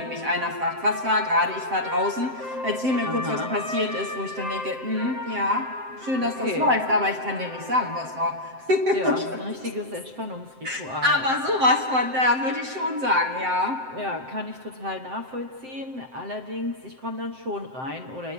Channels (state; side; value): late; left; 7.7 ms